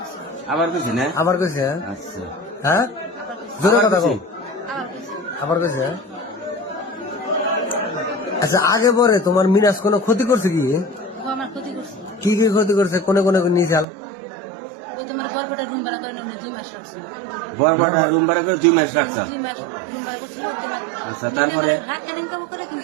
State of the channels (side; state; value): left; drops out; at 13.9 s